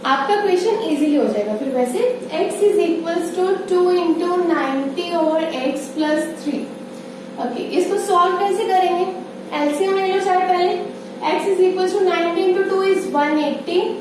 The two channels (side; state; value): both; identical; correlation 1.00